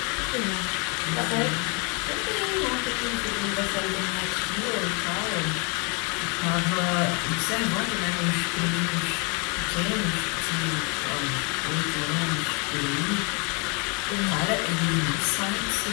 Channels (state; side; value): quieter; right; 32.9 dB